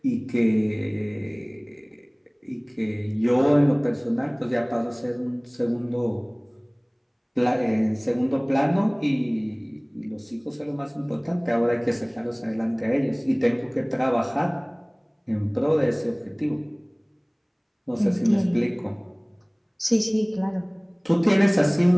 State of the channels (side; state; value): both; identical; correlation 1.00